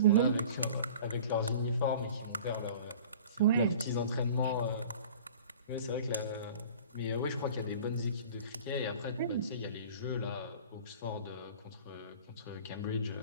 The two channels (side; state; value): both; inverted; correlation -0.43